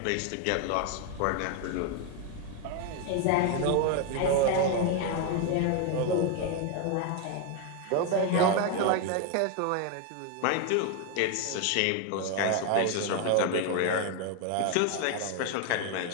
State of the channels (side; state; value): both; different; correlation 0.01